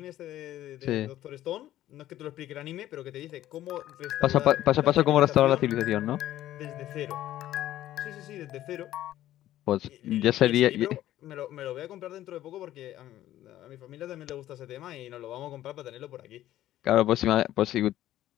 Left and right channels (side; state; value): right; quieter; 13.6 dB